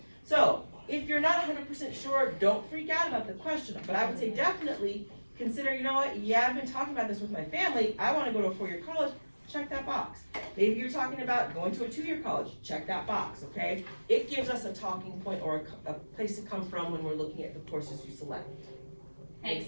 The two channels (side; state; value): both; inverted; correlation -1.00